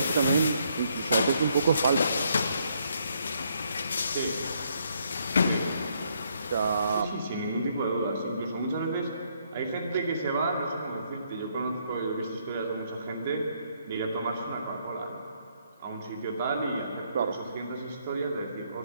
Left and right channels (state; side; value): inverted; both; correlation -0.72